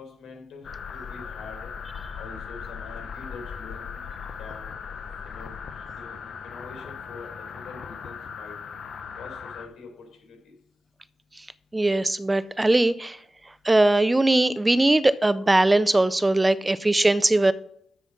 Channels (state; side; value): normal; both; correlation 0.97